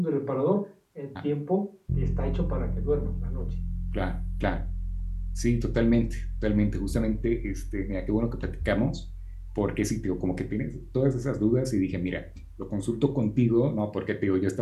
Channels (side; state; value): both; identical; correlation 1.00